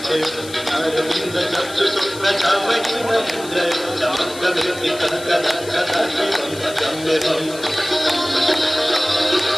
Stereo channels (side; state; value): left; noise; hiss, 15 dB below the sound